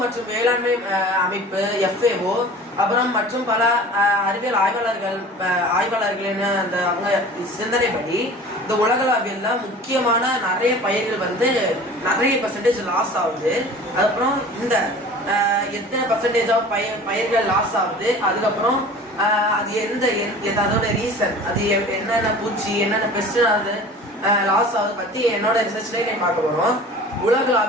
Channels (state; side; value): normal; both; correlation 0.41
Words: மற்றும் வேளாண்மை அமைப்பு FAO அப்புறம் மற்றும் பல அறிவியல் ஆய்வாளர்களின் அந்த அவங்க சிந்தனைப்படி இந்த உலகளாவியல்ல முக்கியமான நிறைய பயிர்கள் வந்து நிறைய % லாஸ் ஆகுது. அதுக்கப்புறம் இந்த எத்தனை % ஆஃப் பயிர்கள் லாஸ் ஆகுது, அதுக்கப்புறம் அது அதோட ரீசன், அது என்னென்ன பூச்சி என்னென்ன பெஸ்ட் அது லாஸ் ஆகுது பத்தி என்னோட ரிசர்ச்லேயே நான் பார்க்க போறோம்.